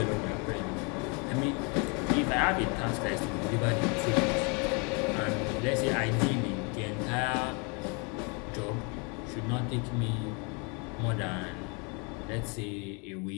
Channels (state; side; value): quieter; right; 33.0 dB